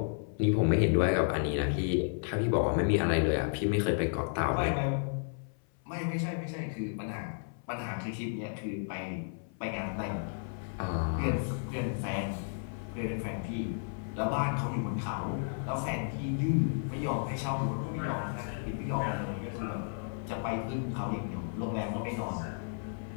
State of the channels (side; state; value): right; silent; 56 dB below the other